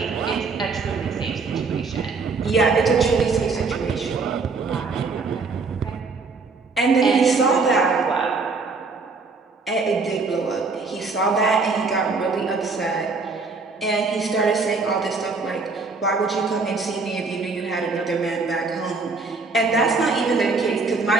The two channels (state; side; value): quieter; left; 4.2 dB